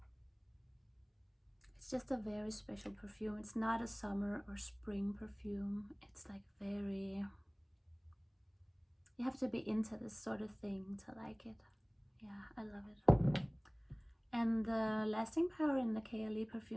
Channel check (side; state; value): both; identical; correlation 1.00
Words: it's just a very special perfume. It's not a summer or spring perfume. It's like very, you have to be into this sort of thing to like it. Yeah, I love it. And the lasting power in the KLE